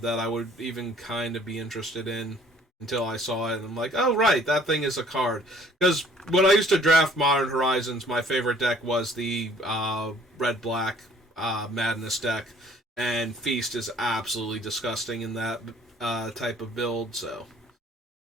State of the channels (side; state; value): both; normal; correlation 0.57